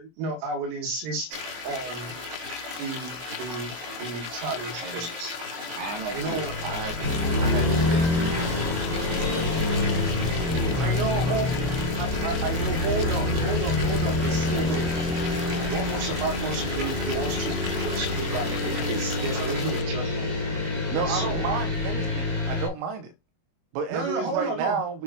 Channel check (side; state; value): left; late; 24 ms